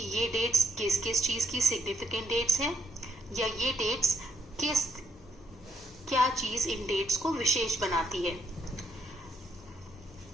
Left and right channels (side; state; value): both; normal; correlation 0.75